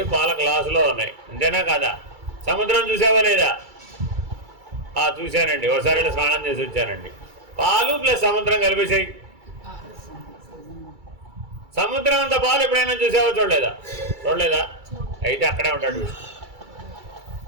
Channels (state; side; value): late; left; 2.3 ms